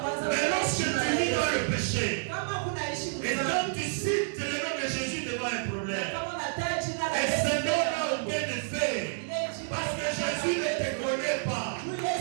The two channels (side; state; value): left; silent; digital silence